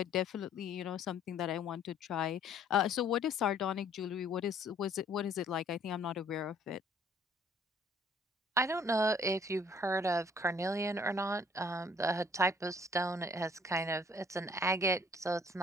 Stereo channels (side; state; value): both; normal; correlation 0.59